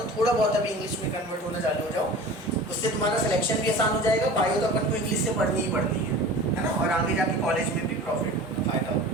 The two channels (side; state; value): both; normal; correlation 0.38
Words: थोड़ा बहुत अभी इंग्लिश में कन्वर्ट होना चालू हो जाओ, उससे तुम्हारा सिलेक्शन भी आसान हो जाएगा। बायो तो अपन को इंग्लिश से पढ़नी ही पड़नी है ना, और आगे जाके कॉलेज में भी प्रॉफिट होगा, फायदा होगा।